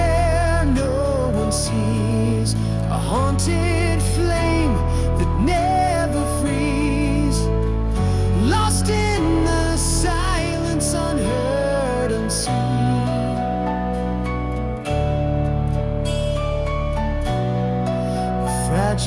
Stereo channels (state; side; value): identical; both; correlation 1.00